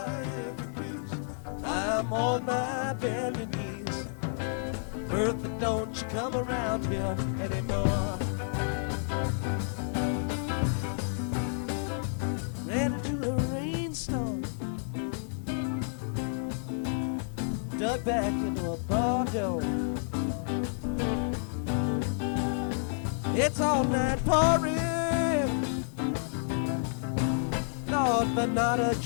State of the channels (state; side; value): silent; right; 58 dB below the other